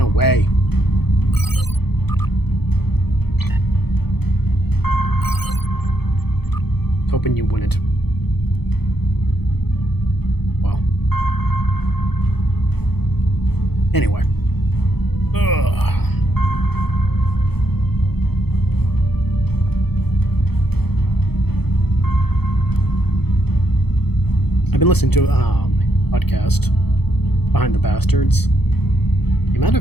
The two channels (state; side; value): late; right; 0.97 ms